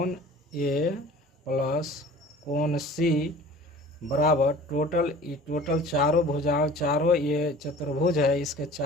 A प्लस कोण C बराबर टोटल चारों भुजाओं, चारों ये चतुर्भुज है, इसके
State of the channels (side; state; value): both; normal; correlation 0.44